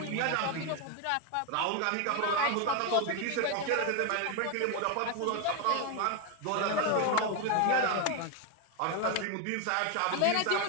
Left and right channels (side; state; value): both; different; correlation 0.01